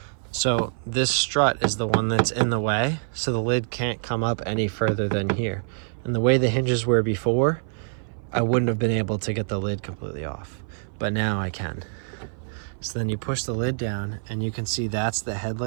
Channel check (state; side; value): silent; left; 57 dB below the other